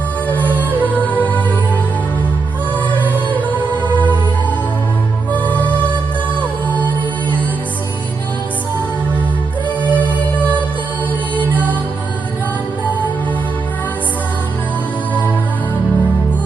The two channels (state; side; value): quieter; left; 4.4 dB